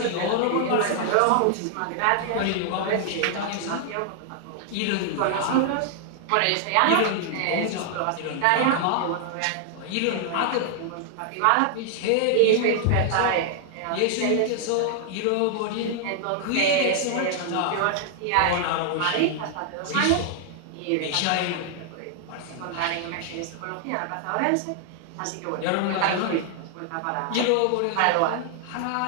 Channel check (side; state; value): both; different; correlation -0.01